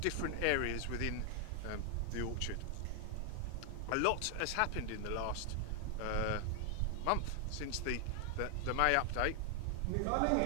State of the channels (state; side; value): different; both; correlation 0.00